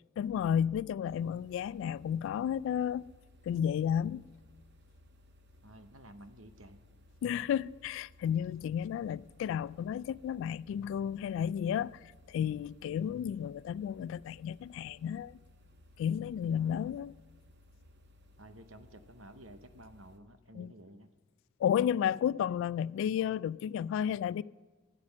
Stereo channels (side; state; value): right; quieter; 8.5 dB